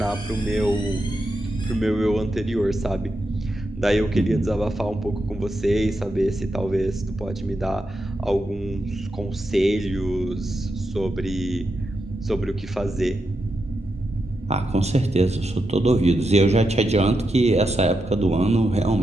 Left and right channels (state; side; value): normal; both; correlation 0.86